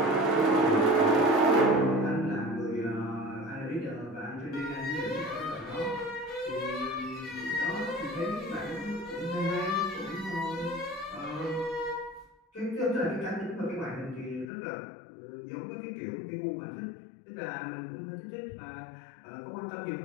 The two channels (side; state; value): right; drops out; at 14.5 s